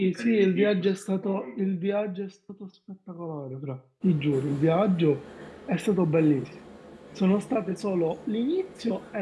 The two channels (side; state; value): both; identical; correlation 1.00